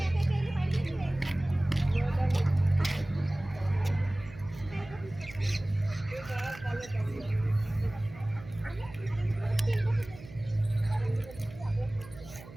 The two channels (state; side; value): noise; right; hum, 17 dB below the sound